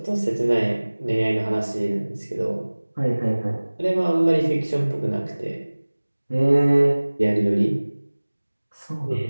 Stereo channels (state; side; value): inverted; both; correlation -1.00